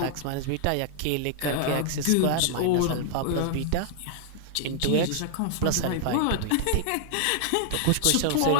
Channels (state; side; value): different; both; correlation -0.01